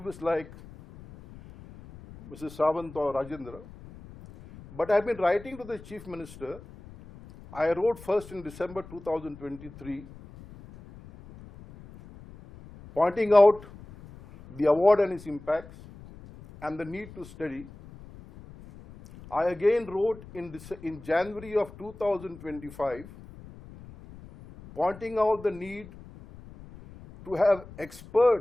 like Mrs. Sawant or Rajendra, but I've been writing to the Chief Minister. I wrote first in December 2023, pointing out the award and its impacts and the need to study. I again wrote in January of 2025, pointing out the need to have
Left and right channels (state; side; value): noise; left; rumble, 18 dB below the sound